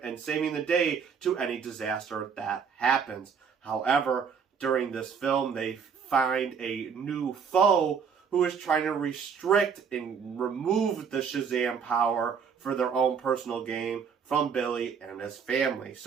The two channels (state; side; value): quieter; left; 6.5 dB